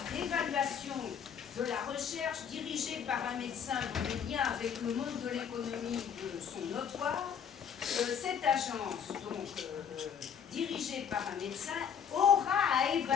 d'évaluation de la recherche dirigée par un médecin dont les liens avec le monde de l'économie sont notoires, cette agence, donc dirigée par un médecin, aura à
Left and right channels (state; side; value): quieter; right; 7.8 dB